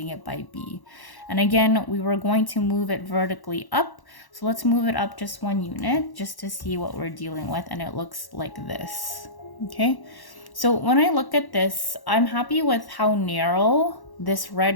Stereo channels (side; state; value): right; late; 1.1 ms